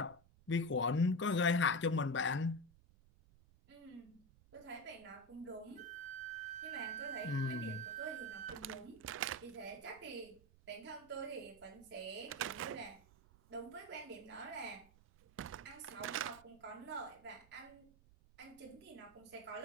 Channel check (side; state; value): right; noise; rumble, 25 dB below the sound